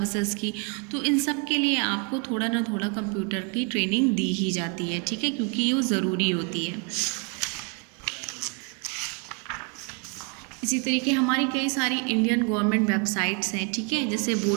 की। तो इन सब के लिए आपको थोड़ा ना थोड़ा कंप्यूटर की ट्रेनिंग दी ही जाती है। ठीक है, क्योंकि ये ज़रूरी होती है। इसी तरीके हमारी कई सारी इंडियन गवर्नमेंट वेबसाइट्स हैं। ठीक है, जैसे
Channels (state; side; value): quieter; left; 35.4 dB